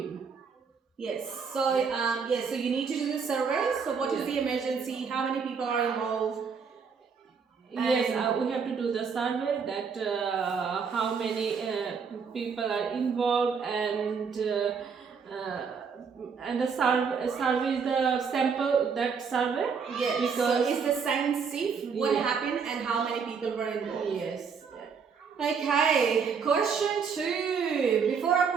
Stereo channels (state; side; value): quieter; left; 5.9 dB